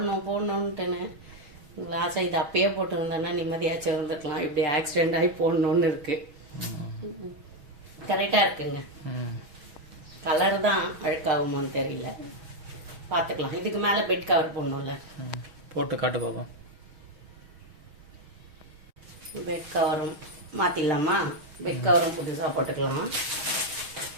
ஆசை. இது அப்பயே போட்டுருந்தேன்னா நிம்மதியாச்சும் இருந்துக்கலாம். இப்படி ஆக்சிடென்ட் ஆகி போடணுன்னு இருக்கு. கரெக்டாக இருக்குங்க. கலர் தான் அழுக்காகுமோன்னு தெரியல, பார்த்துக்கலாம். இதுக்கு மேலே பெட் கவர் போடணும்ல, போட்டு காட்டு பாப்போம். பெட் கவரும் மாற்றிடலாமா? பெட் கவரும் புதுசாக போட்டுக்கலாம்.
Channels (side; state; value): left; late; 6.3 ms